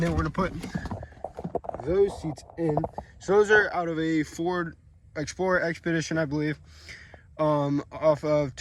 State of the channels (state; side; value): identical; both; correlation 1.00